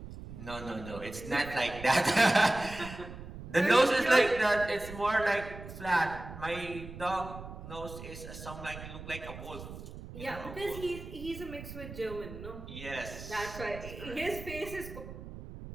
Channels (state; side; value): noise; right; rumble, 12 dB below the sound